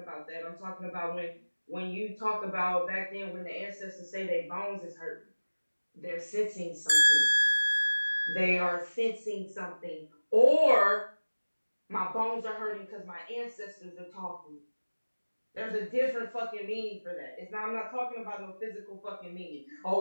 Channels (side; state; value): both; inverted; correlation -1.00